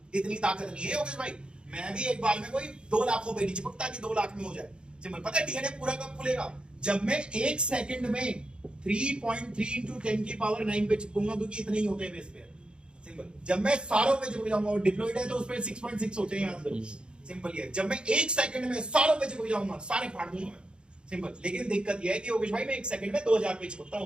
इतनी ताकत नहीं है योगेश भाई। मैं भी एक बार में कोई 2 लाखों पे नहीं चिपकता कि 2 लाख में हो जाए। सिंपल। पता है डीएनए पूरा कब खुलेगा? जब मैं एक सेकंड में 3.3 into 10 की पावर 9 पे चिपकूंगा, क्योंकि इतने ही होते हैं बेस पेयर। सिंपल। जब मैं सारों पे चिपक जाऊंगा, और डिप्लॉयड है तो उस पे 6.6 होते हैं, याद करो। सिंपल ये। जब मैं एक सेकंड में सारों पे चिपक जाऊंगा, सारे फाड़ दूंगा मैं। सिंपल। लेकिन दिक्कत यह है कि योगेश भाई मैं एक सेकंड में 2000 पे चिपकता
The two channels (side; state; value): left; late; 0.053 ms